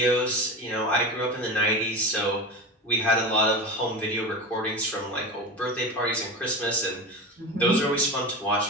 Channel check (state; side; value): normal; both; correlation 0.26